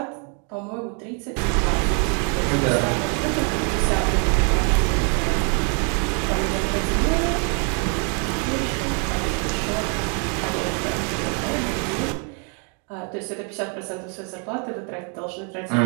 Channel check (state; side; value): quieter; left; 38.8 dB